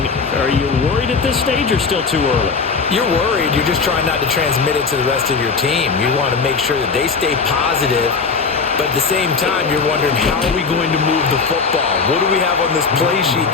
Are you worried at this stage or still too early? You're worried. You're just trying not to transmit it to the rest of your team. You want to make sure that they stay positive, but at the same time, you're wondering, how are we going to move the football? What do we have on this play sheet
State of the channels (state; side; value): quieter; right; 4.9 dB